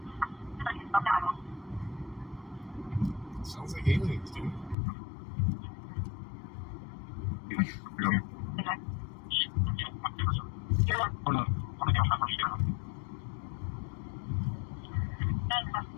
Sounds like aliens, dude.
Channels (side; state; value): right; drops out; at 4.8 s